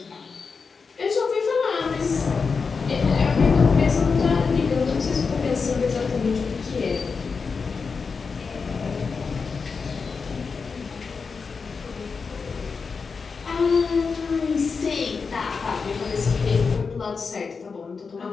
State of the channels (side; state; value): right; quieter; 5.1 dB